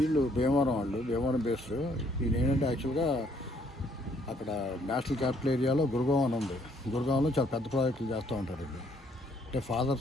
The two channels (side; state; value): both; normal; correlation 0.66